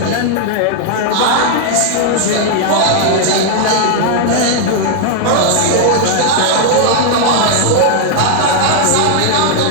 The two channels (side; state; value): both; different; correlation 0.00